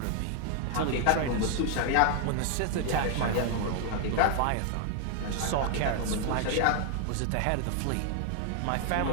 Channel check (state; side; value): different; both; correlation 0.00